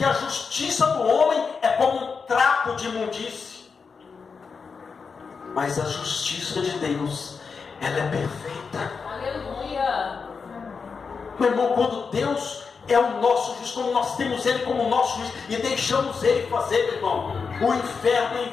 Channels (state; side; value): quieter; right; 5.3 dB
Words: a justiça do homem é como um trapo de imundície. Mas a justiça de Deus, ela é perfeita. Aleluia. Meu irmão, quando Deus é o nosso juiz, como nós temos Ele como nosso juiz e deixamos Ele fazer, meu irmão, o inferno é